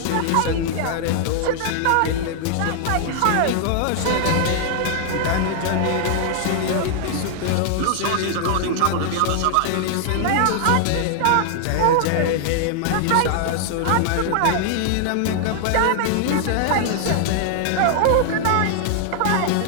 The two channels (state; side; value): different; both; correlation -0.01